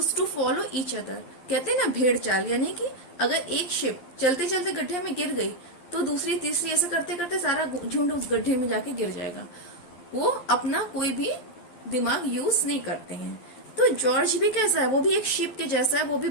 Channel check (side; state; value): right; late; 12 ms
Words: to follow each other. कहते हैं ना भेड़ चाल, यानी कि अगर एक शिप चलते चलते गड्ढे में गिर गई तो दूसरी तीसरी ऐसे करते करते सारा झुंड उस गड्ढे में जाके गिर जाएगा. वो अपना कोई भी दिमाग यूज नहीं करते हैं. तो जॉर्ज भी कैसा है, वो भी एक शिप के जैसा है, वो भी